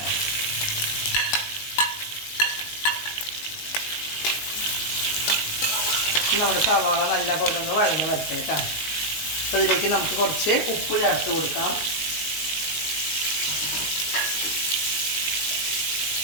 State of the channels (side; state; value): right; late; 19 ms